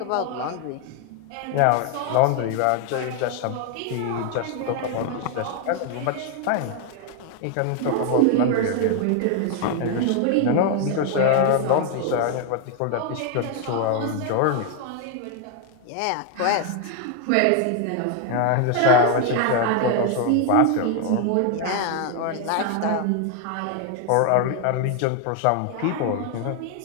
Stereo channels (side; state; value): both; different; correlation 0.00